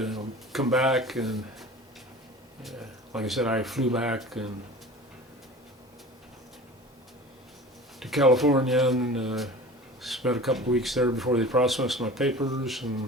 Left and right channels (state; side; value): normal; both; correlation 0.39